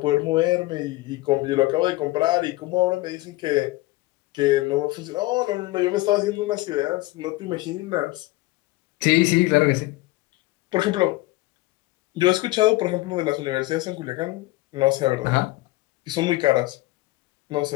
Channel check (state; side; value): quieter; right; 19.7 dB